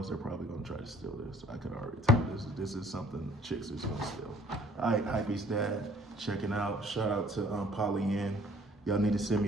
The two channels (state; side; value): normal; both; correlation 0.57